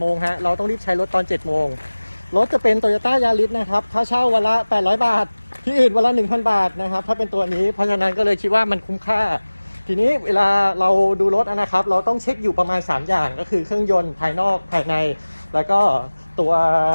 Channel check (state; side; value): inverted; both; correlation -1.00